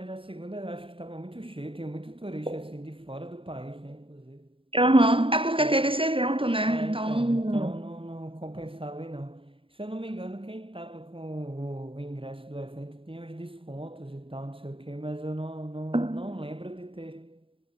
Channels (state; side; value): late; left; 0.26 ms